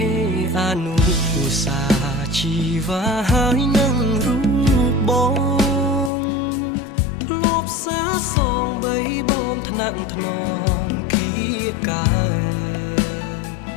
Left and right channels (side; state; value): right; drops out; at 6.1 s